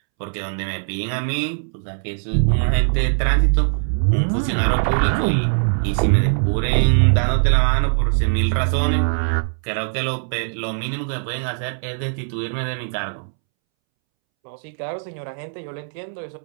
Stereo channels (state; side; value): silent; left; 65 dB below the other